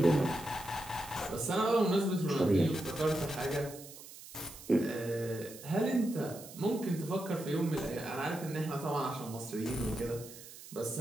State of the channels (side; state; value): right; noise; hiss, 16 dB below the sound